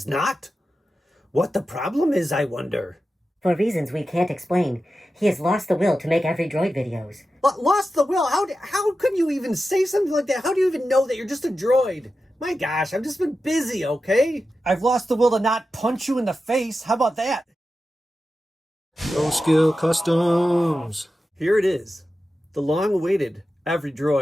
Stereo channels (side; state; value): both; normal; correlation 0.92